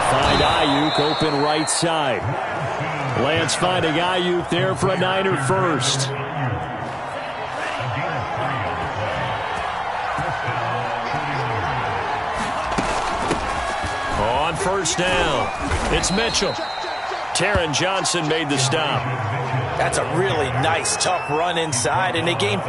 find Ayuk open right side. Lance finding Ayuk there for a Niner first. On 1st down, it's Mitchell. Taron Johnson made the stop. That's a really nice, tough run inside, and they gained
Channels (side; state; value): both; identical; correlation 1.00